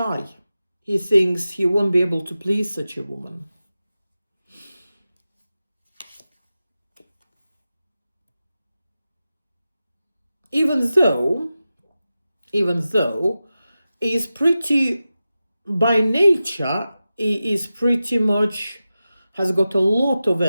He thinks he won't be able to please such a woman. Even though he's pretty, by nature, he is pretty much, has got a lot of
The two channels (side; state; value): both; inverted; correlation -0.93